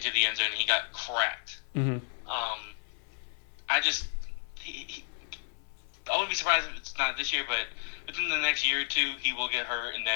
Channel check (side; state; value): right; silent; 56 dB below the other